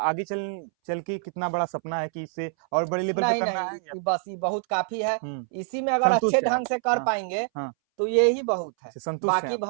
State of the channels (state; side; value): silent; left; 61 dB below the other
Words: चल के कितना बड़ा सपना है कि इससे और बड़े लेवल पे नहीं करना नहीं, है? बस ये बहुत काफी है, इसी में अगर संतुष्ट अच्छे है ढंग से कर हाँ, पाएंगे हाँ, तो ये ही बहुत है। संतुष्ट बाकी है